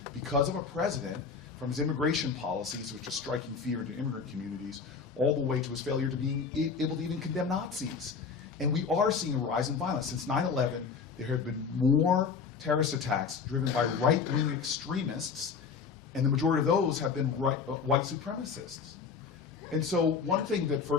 because of a president, from his immigration policies, which is striking fear into immigrant communities, all the way to his failure to being able to even condemn Nazis. And we are seeing a rise in violence. Since 9/11, there have been more terrorist attacks driven by right-wing extremists, and the majority of those have been white supremacists. And so one thing that,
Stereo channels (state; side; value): quieter; right; 5.6 dB